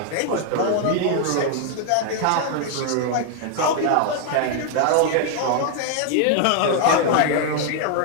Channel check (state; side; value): different; both; correlation 0.00